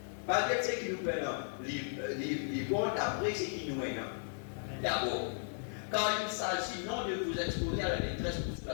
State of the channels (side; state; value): right; silent; digital silence